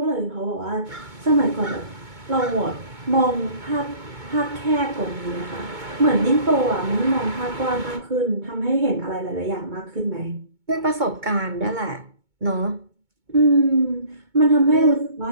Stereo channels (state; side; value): late; left; 2.2 ms